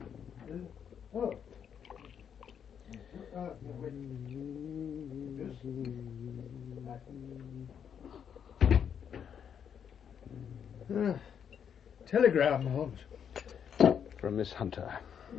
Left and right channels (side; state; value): right; quieter; 8.0 dB